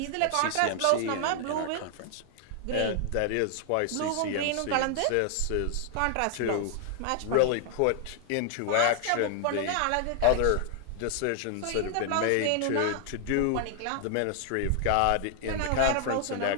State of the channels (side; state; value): both; different; correlation 0.00